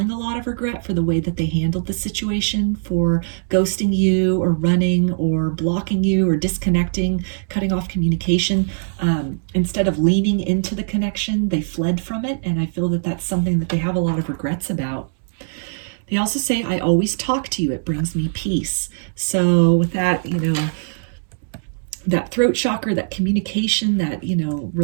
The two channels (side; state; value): left; silent; digital silence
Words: a lot of regret for the way that they handled the situation, for ghosting you or running or blocking you or disconnecting, cutting off communication. Instead of leaning into the connection, they fled from it. And I feel that that's something that they have a lot of regrets about. They also say, I always talk to you. It brings me peace. So with that, you know, that throat chakra, that communication, that, you know,